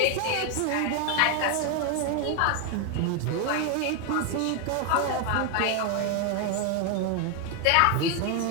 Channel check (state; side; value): different; both; correlation 0.01